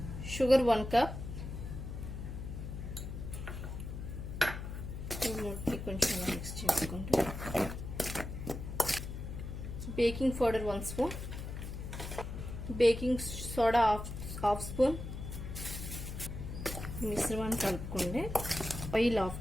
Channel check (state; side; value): noise; left; hum, 7 dB below the sound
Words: Sugar 1 cup. కొంచెం మిక్స్ చేసుకోండి. Baking powder 1 spoon, baking soda half spoon. మిశ్రమాన్ని కలుపుకోండి. Oil 1/2